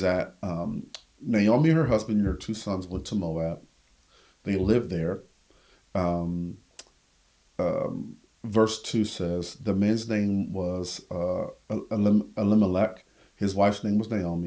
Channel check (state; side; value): identical; both; correlation 1.00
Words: that Naomi, her husband, and her 2 sons went to Moab. They lived there. Verse 2 says, the man's name was Elimelech, his wife's name was